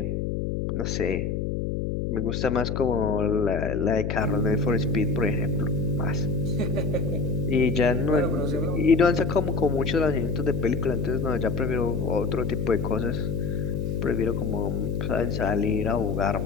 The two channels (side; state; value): left; noise; hum, 1 dB below the sound